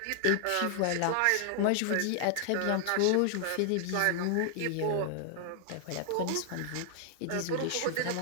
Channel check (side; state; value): both; different; correlation 0.00